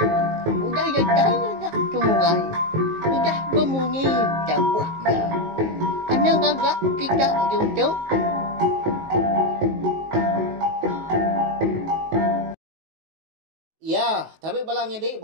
udah ya ya temuai, udah berbunyi cabutnya. Anak gagak kita YouTube. Ya, tapi balamnya di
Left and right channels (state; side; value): late; left; 19 ms